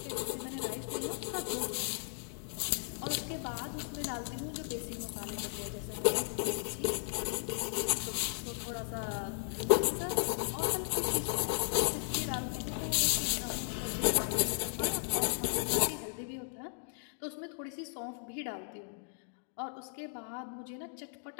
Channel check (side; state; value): right; silent; digital silence